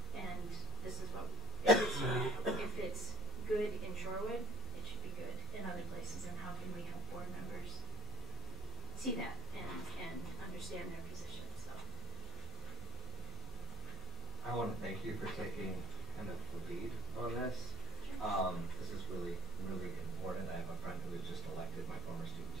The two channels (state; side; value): normal; both; correlation 0.45